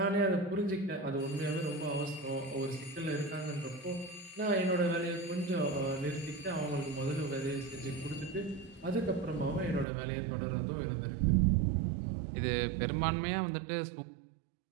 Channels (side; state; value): left; drops out; at 9.9 s